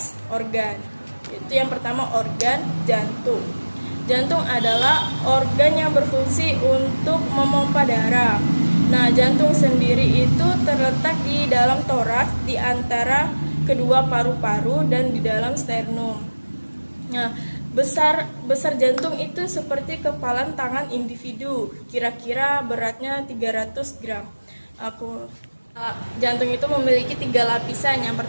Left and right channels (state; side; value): inverted; both; correlation -1.00